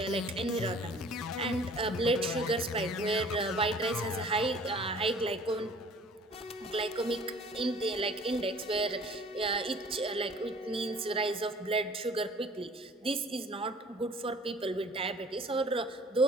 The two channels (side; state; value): both; normal; correlation 0.50